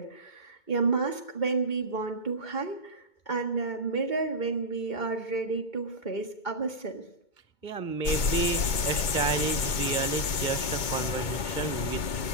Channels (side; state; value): right; late; 2.2 ms